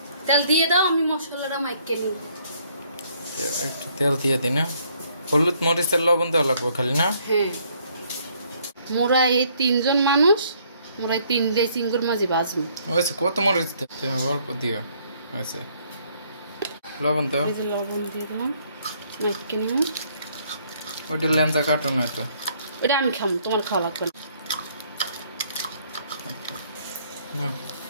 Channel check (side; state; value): both; inverted; correlation -0.65